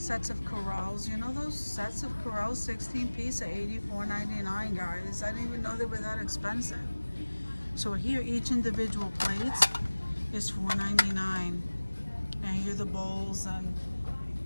of Corrals. You know those sets of Corrals, 16 piece at $84.99, guys. I didn't even know they were that expensive. So here each individual plate is $4.99. And here are the bowls, and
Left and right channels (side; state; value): both; inverted; correlation -1.00